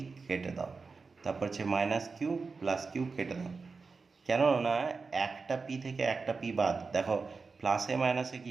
কেটে দাও, তারপর হচ্ছে মাইনাস কিউ প্লাস কিউ কেটে দাও। কেননা একটা পি থেকে একটা পি বাদ, দেখো প্লাসে মাইনাসে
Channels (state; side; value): quieter; left; 4.5 dB